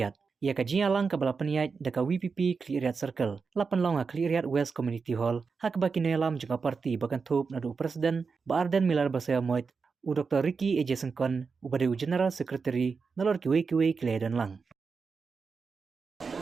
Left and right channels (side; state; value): left; quieter; 5.1 dB